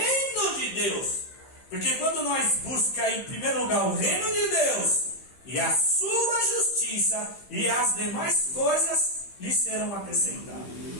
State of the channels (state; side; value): late; right; 15 ms